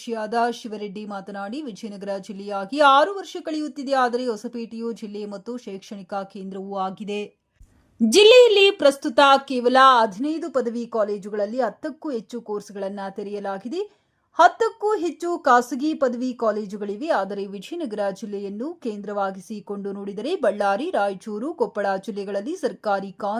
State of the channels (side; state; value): both; identical; correlation 1.00